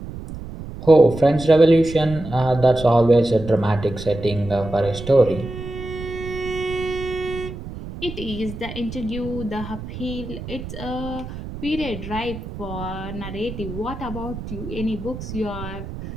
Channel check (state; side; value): noise; right; rumble, 10 dB below the sound